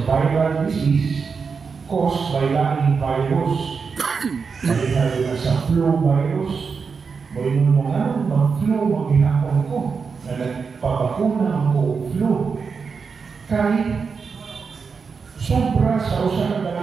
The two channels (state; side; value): quieter; left; 5.4 dB